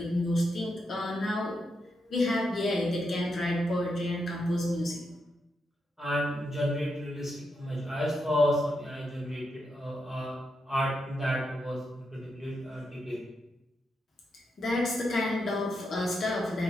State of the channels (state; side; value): normal; both; correlation 0.84